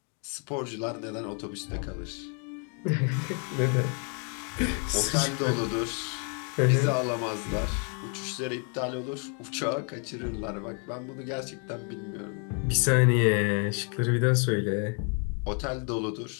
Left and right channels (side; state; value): right; quieter; 39.5 dB